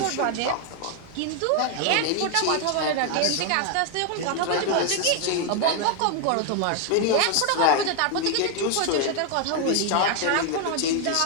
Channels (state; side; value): different; both; correlation 0.00